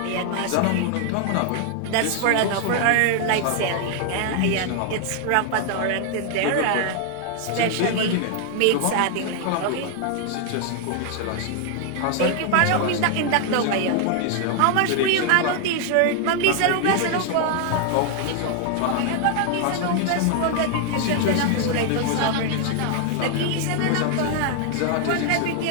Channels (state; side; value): different; both; correlation 0.00